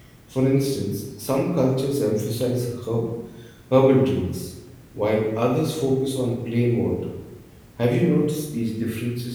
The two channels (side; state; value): both; identical; correlation 1.00